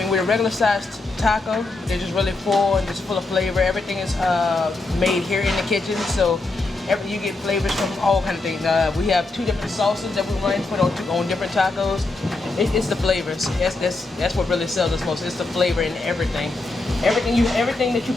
with a regular sized taco, they're just really full and just full of flavor. Everything is made here in the kitchen, so you get flavors from all kind of things. We have 2 different sauces that we run and put on different tacos. It's the flavors. That's what really sells us most. It's the flavor in everything. Everything that you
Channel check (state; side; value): quieter; right; 3.3 dB